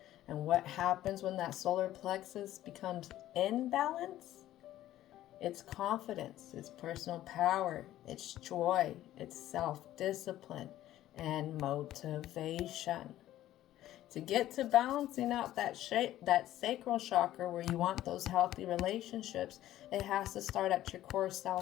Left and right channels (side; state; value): right; quieter; 13.7 dB